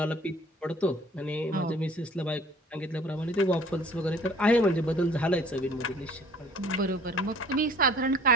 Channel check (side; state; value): both; normal; correlation 0.51